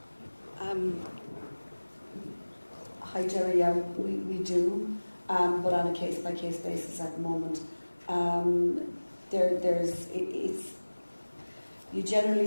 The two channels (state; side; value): inverted; both; correlation -1.00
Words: Hi Jerry, yeah, we do, but on a case-by-case basis at the moment. You generally